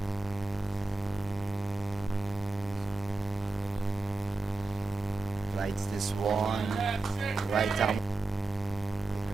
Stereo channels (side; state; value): left; quieter; 3.3 dB